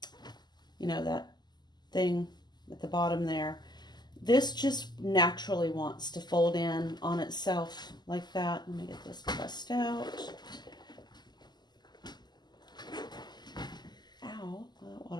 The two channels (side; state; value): right; late; 0.21 ms